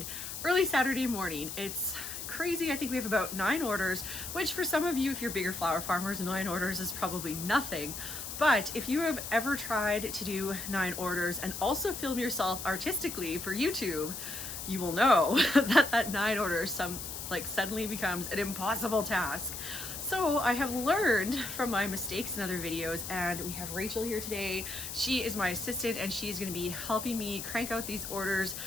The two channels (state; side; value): noise; left; hiss, 7 dB below the sound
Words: early Saturday morning. It's crazy. I think we have about 9 orders, which for some of you, if you're bigger flower farmers, 9 orders is probably nothing. But if you have ever tried to do 9 orders and also film yourself artistically for YouTube, you will know that 9 orders like suddenly becomes an impossible task. So I have learned from my mistakes in other videos, and we have Rachel here today. She is my assistant and she's going to be helping me crank out these orders,